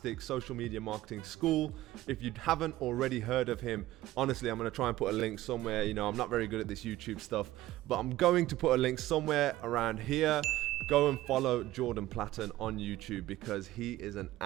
social media marketing school. If you haven't already heard of him, honestly, I'm going to try and put a link somewhere. You know, I'm not very good at this YouTube stuff, but I'm going to put a link somewhere around here. Go and follow Jordan Platten on YouTube because he is an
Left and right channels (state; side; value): quieter; left; 16.0 dB